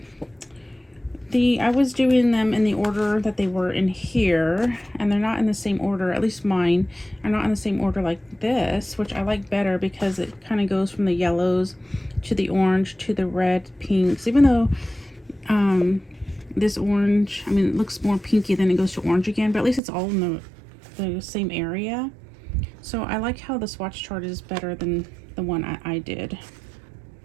was doing them in the order that they were in here, and they're not in the same order. At least mine are not in the same order like this, which I like better because it kind of goes from the yellows to the orange to the red, pinks. Even though this orange, I mean, it looks more pinky, then it goes to orange again, but at least it's all in the same area. So I like how the swatch chart is better than the one I did.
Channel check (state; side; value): drops out; left; at 19.8 s